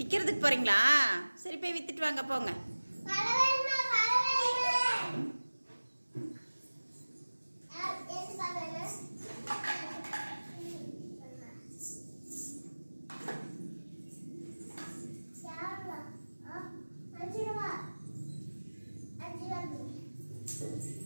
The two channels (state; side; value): inverted; both; correlation -1.00